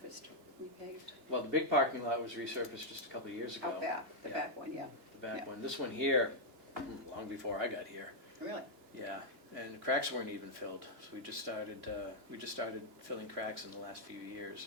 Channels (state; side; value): late; left; 2.9 ms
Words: repaved? Well, the big parking lot was resurfaced just a couple of years ago. Out back, the Yeah. back one, yeah, The back Yeah. one. This one here, long before I got here. really? Yeah, and the cracks weren't even filled, so we just started filling cracks in the last few